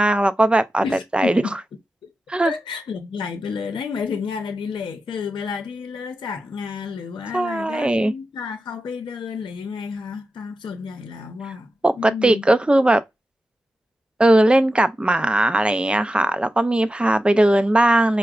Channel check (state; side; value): normal; both; correlation 0.91